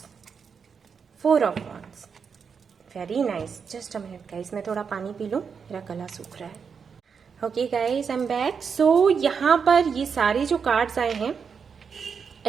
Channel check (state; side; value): quieter; left; 6.2 dB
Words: 4 of Wands, very nice। Just a minute guys, मैं थोड़ा पानी पी लूँ, मेरा गला सूख रहा है। Okay guys, I am back. So यहाँ पर ये सारे जो कार्ड्स आए हैं